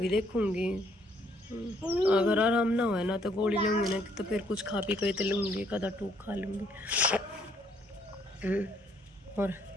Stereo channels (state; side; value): normal; both; correlation 0.67